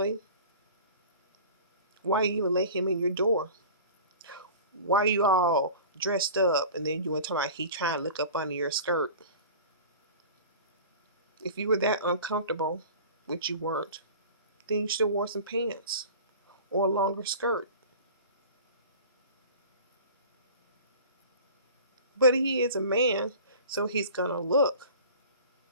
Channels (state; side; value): inverted; both; correlation -0.39